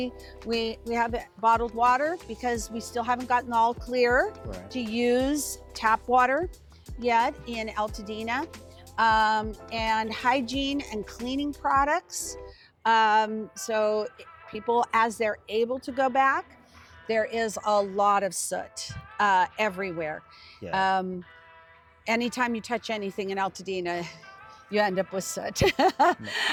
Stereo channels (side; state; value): both; identical; correlation 1.00